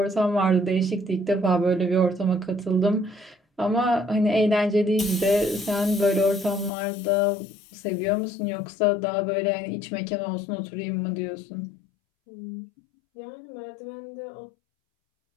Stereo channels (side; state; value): right; drops out; at 6.7 s